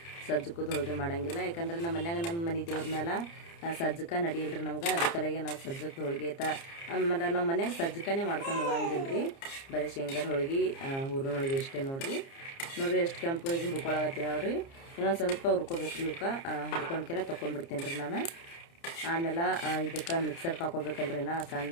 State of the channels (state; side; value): late; right; 30 ms